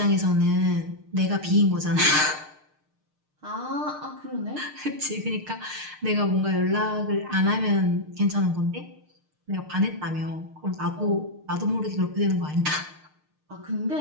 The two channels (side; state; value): left; late; 6.6 ms